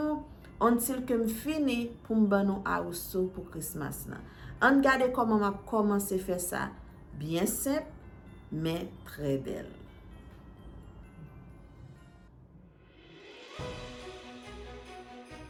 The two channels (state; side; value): identical; both; correlation 1.00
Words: Until que me fini pour me donner house pour Christmas là. On regarde comment m'a commencé à faire ça. Bien simple, mais très belle.